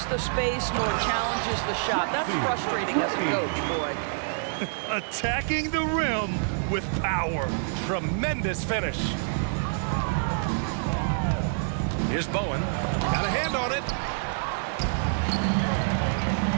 the space nor challenges the shot. That's frustrating as a coach, boy. Attacking the rim with power. Tremendous finish. Here's Bowen. Got a hand on it.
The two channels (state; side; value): silent; left; digital silence